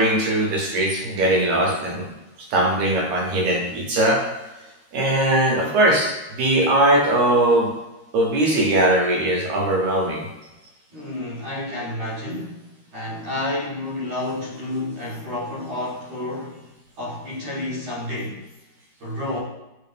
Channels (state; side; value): late; left; 13 ms